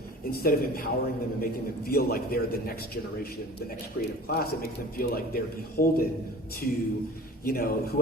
instead of empowering them and making them feel like they're the next generation, the next creative class, it makes them feel like they're beholden to,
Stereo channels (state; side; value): normal; both; correlation 0.41